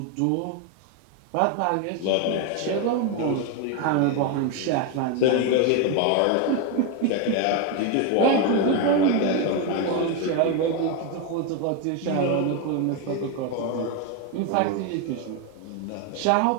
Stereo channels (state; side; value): different; both; correlation 0.02